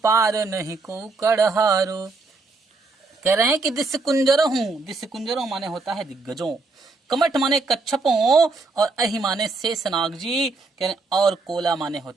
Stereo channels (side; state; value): left; quieter; 3.8 dB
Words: पार नहीं को कड़हारू। कह रहे हैं कि दिस कुंजरों माने होता है दिग्गजों, कमठ माने कच्छपों और अहि माने शेषनाग जी, कह रहे और कोला माने